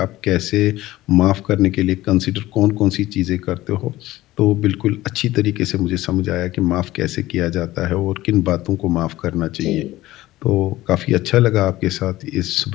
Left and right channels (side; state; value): right; quieter; 16.7 dB